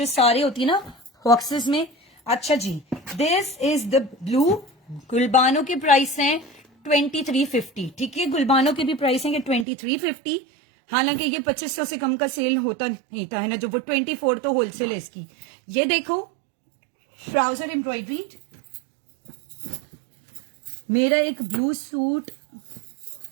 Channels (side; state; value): left; drops out; at 9.7 s